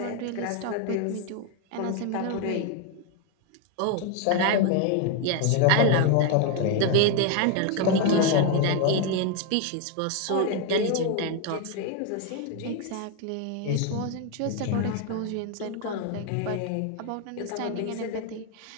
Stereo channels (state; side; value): different; both; correlation 0.01